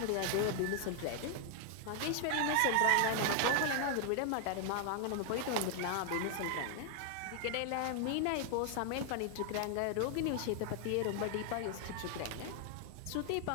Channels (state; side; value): different; both; correlation 0.00